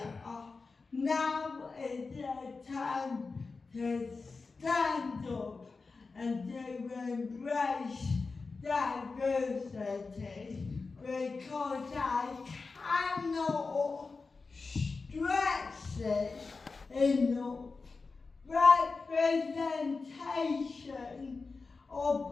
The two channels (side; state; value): right; quieter; 4.2 dB